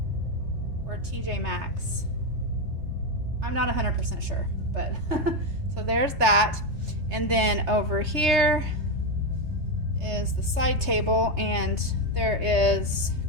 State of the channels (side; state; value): left; late; 3.3 ms